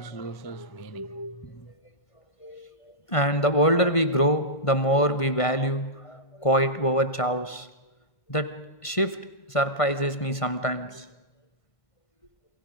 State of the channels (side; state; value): right; late; 1.5 ms